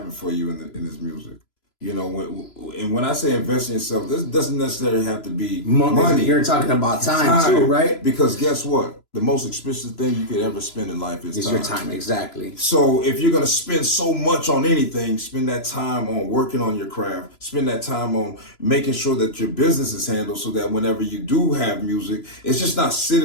for you in this music. You know, when I say invest in yourself, this doesn't necessarily have to be money. You're talking about time too, right? Because guess what? The most expensive thing you could ever spend in life is time. Your time, exactly. So if you're going to spend so much on anything, spend that time on working on your craft. Spend that time on making sure that your business is handled so that whenever you do have music, it's just not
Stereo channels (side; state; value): right; late; 3.0 ms